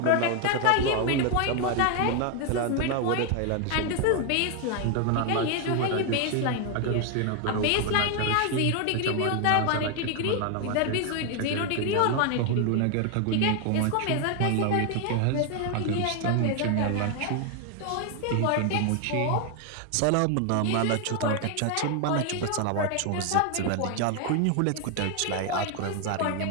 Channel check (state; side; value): different; both; correlation 0.01